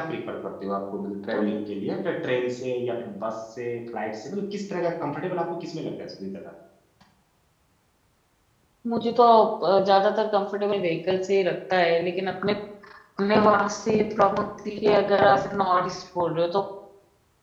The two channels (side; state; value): both; identical; correlation 1.00